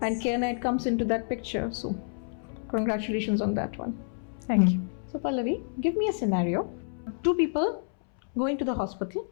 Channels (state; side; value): silent; right; 59 dB below the other